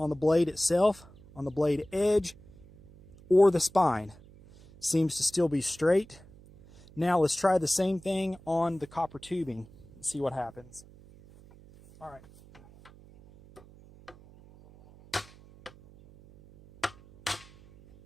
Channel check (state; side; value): noise; right; hum, 23 dB below the sound